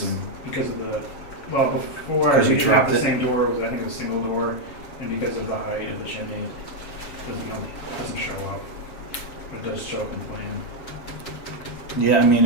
Because of the, well, before, Because you we had dropped the it? same door, I think it was a single door, and because of the height of the chimney, it doesn't show up. But it does show up in plan. Yeah, I mean,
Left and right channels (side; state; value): right; late; 7.0 ms